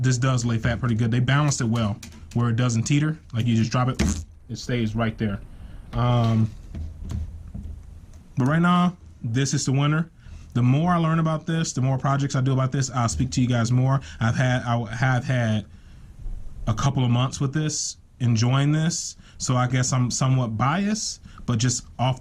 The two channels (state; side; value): identical; both; correlation 1.00